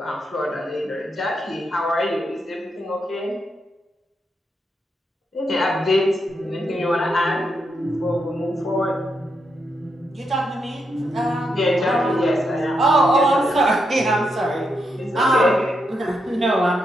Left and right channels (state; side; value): normal; both; correlation 0.82